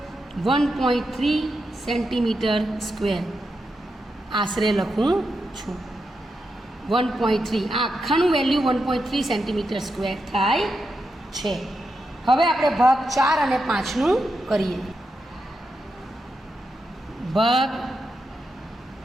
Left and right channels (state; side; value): normal; both; correlation 0.86